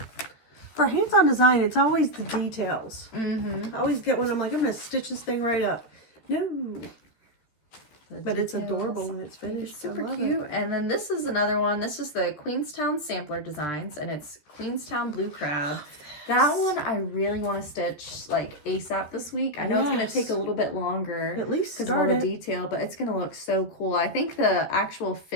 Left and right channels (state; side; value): late; right; 13 ms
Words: For hands-on design, it's always the details. Mm-hmm. I always get one, I'm like, I'm going to stitch this thing right up. No. But it's adorable when it's finished. It's super I love cute. it. And then this is another one. This is the Queenstown Sampler Designs, and it's Queenstown Blue Crab. That one I really want to stitch like ASAP this week. I know it's going to take a little bit longer. At least because of all start the it. detail, but it's going to look so cool. I think the actual